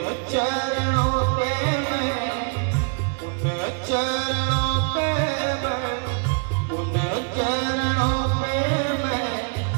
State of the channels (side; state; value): left; quieter; 38.8 dB